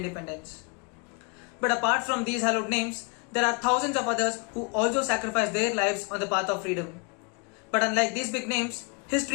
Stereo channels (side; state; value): right; quieter; 34.1 dB